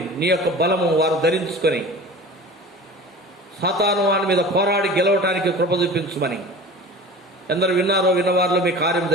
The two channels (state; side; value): normal; both; correlation 0.38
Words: నీ యొక్క బలము వారు ధరించుకొని సాతాను వాని మీద పోరాడి గెలవటానికి కృప చూపించమని, ఎందరు విన్నారో విన్నవారిలో మీ కార్యం